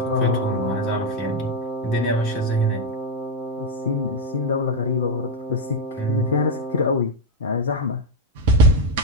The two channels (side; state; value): both; normal; correlation 0.03